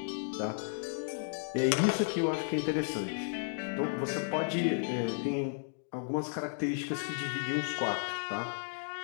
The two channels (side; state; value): right; silent; digital silence